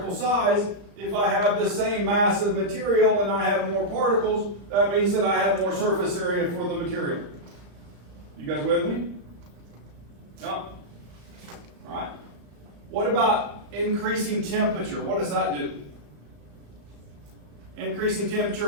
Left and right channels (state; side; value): late; left; 35 ms